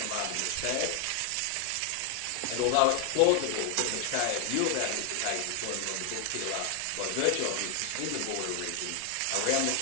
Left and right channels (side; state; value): both; different; correlation 0.00